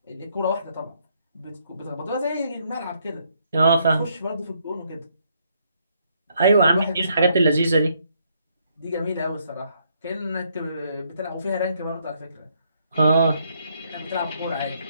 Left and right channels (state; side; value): inverted; both; correlation -0.72